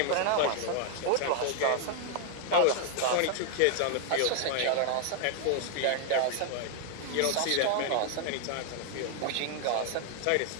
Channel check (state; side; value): different; both; correlation 0.00